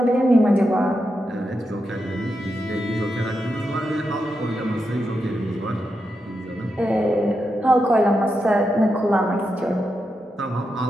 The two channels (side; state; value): both; normal; correlation 0.86